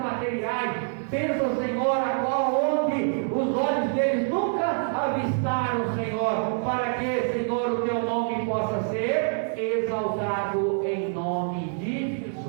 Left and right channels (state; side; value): silent; left; digital silence